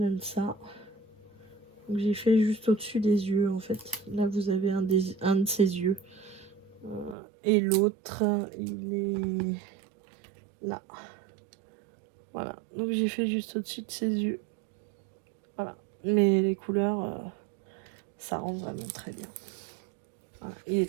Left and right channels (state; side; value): drops out; left; at 7.2 s